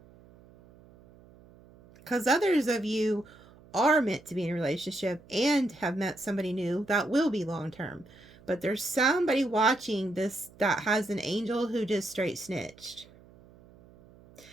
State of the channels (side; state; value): right; noise; hum, 25 dB below the sound